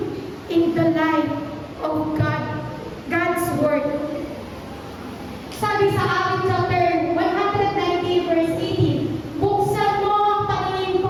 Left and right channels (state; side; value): identical; both; correlation 1.00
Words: in the light of God's Word. Sabi sa Acts chapter 190 verse 18, buksan mo ang paningin